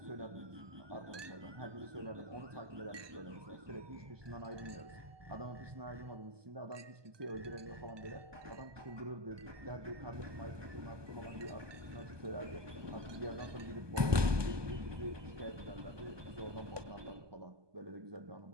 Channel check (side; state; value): left; late; 1.2 ms